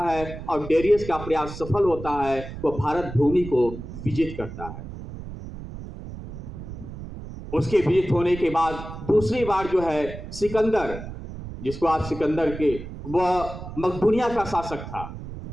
है और डेरियस का प्रयास सफल होता है, वह भारत भूमि को विजित करता है। उसके विजित होने के बाद दूसरी बार जो है सिकंदर, जिसको आप सिकंदर के, वह मकदूनिया का शासक था।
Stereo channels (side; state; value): right; noise; rumble, 11 dB below the sound